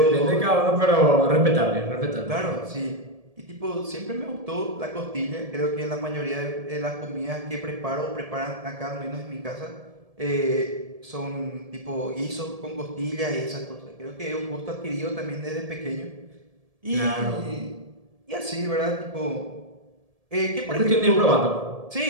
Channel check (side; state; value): left; late; 1.7 ms